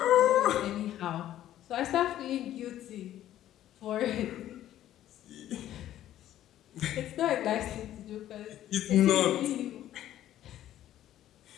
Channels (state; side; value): quieter; right; 12.5 dB